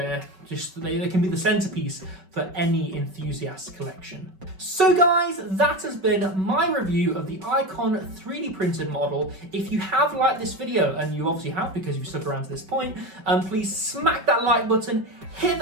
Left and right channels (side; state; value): left; late; 5.3 ms